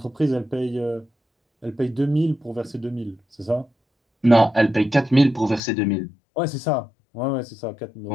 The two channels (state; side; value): drops out; right; at 5.6 s